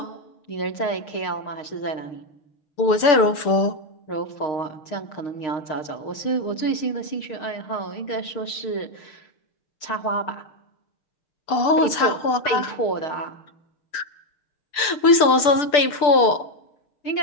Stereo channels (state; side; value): late; right; 6.8 ms